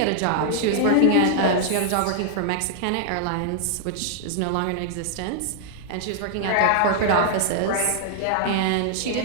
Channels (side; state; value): both; different; correlation -0.01